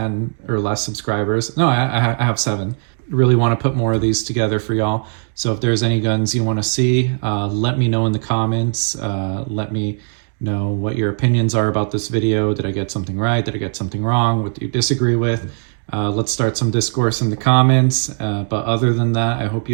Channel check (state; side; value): silent; left; digital silence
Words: or less subscribers. No, I have 7. Really want to put more of these together for y'all. So if there's any guns you want to see, let me know in the comments. Let me know what your opinions are about this video. Did I get something right? Did I get something wrong? What do you disagree with? Let's start some discourse in the comments. But other than that, I hope